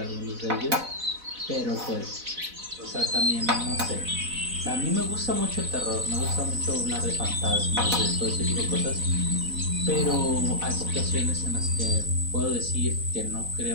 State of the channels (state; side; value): late; left; 4.0 ms